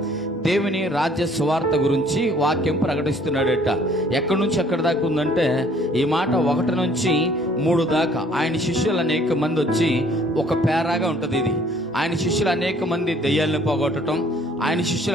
దేవుని రాజ్య సువార్త గురించి వాక్యం ప్రకటిస్తున్నాడట. ఎక్కడి నుంచి ఎక్కడి దాకా ఉందంటే ఈ మాట 1 నుంచి 3 దాకా. ఆయన శిష్యులు అనేక మంది వచ్చి ఒక పేరాగా ఉంటుంది ఇది. ఆయన శిష్యులు అనేక మంది దెయ్యాలను పోగొట్టడం, ఆయన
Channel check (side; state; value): both; normal; correlation 0.59